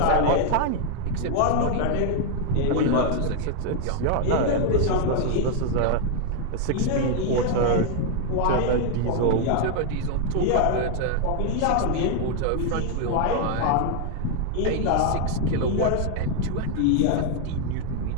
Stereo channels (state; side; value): different; both; correlation 0.00